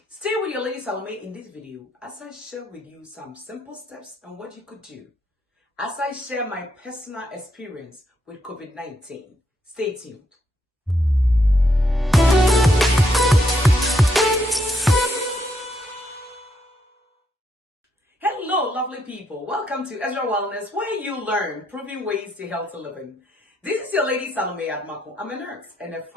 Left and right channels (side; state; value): both; normal; correlation 0.76